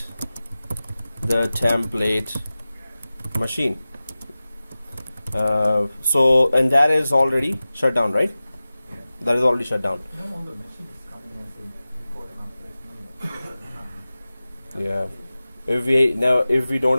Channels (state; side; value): inverted; both; correlation -0.97